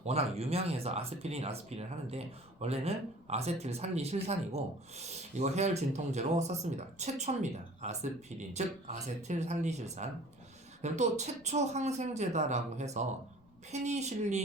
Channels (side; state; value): left; noise; rumble, 28 dB below the sound